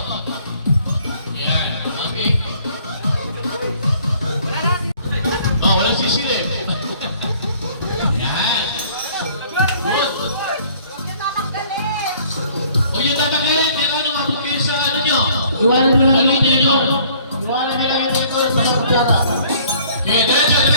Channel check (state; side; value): inverted; both; correlation -0.57